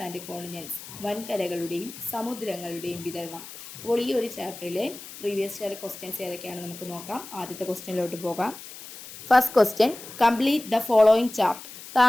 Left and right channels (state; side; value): noise; left; hiss, 14 dB below the sound